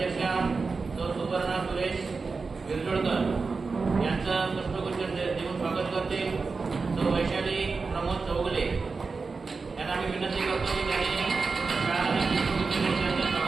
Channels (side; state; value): left; quieter; 4.4 dB